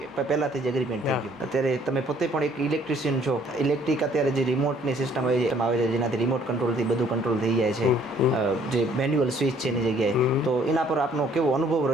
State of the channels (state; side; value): normal; both; correlation 0.61